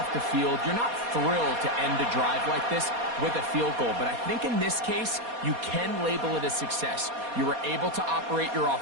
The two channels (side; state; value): left; late; 4.2 ms